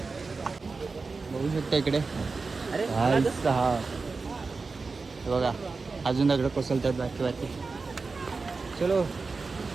बघू शकता इकडे. भाई साहब हे बघा अजून दगड कोसळतात बाकी बाकी. चलो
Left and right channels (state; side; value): quieter; left; 4.2 dB